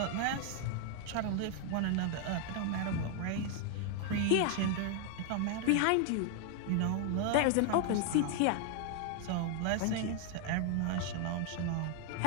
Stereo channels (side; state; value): both; different; correlation 0.00